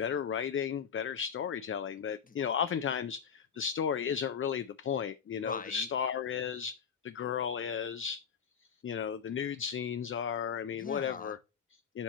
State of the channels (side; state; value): right; quieter; 7.3 dB